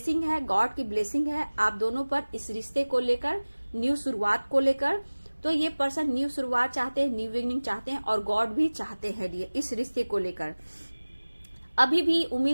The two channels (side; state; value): both; inverted; correlation -1.00